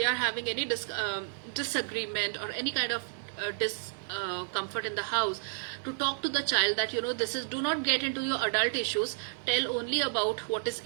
are having any disagreement or any kind of discomfort in the house, to talk to the child that do not get into your adult issues. Tell only about what is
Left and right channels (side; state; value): left; silent; digital silence